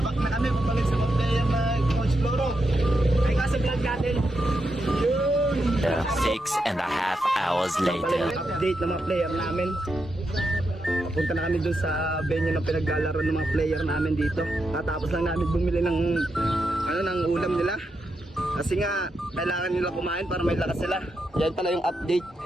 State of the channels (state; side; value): normal; both; correlation 0.85